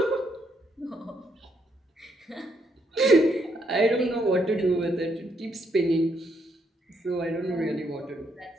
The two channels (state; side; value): normal; both; correlation 0.75